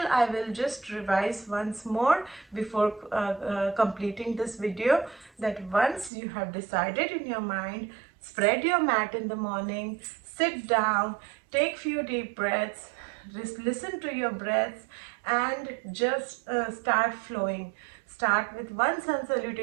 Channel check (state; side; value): drops out; left; at 6.1 s